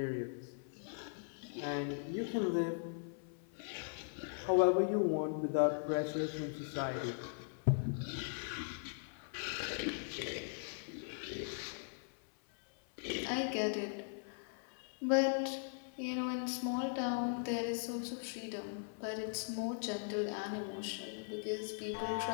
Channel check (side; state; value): right; silent; 51 dB below the other